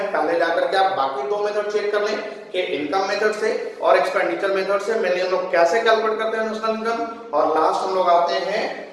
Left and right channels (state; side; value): identical; both; correlation 1.00